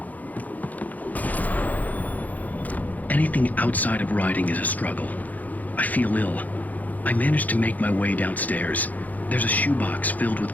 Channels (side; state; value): right; late; 0.079 ms